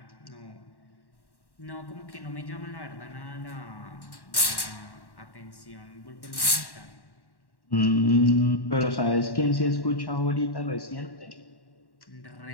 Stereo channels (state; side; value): late; right; 1.1 ms